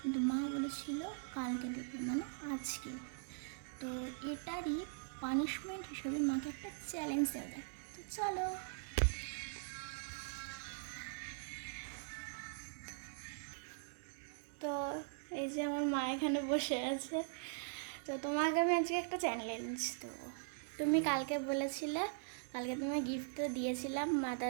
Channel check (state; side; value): silent; left; digital silence